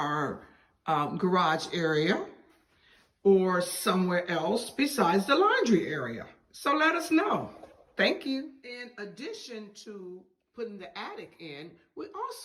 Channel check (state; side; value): identical; both; correlation 1.00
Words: garage area or somewhere else besides the laundry area. So let us know. Thank you. In addition to putting the attic in, we